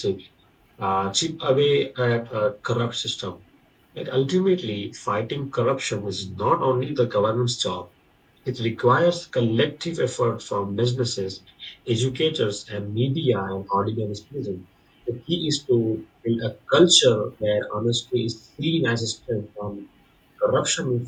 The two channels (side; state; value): both; identical; correlation 1.00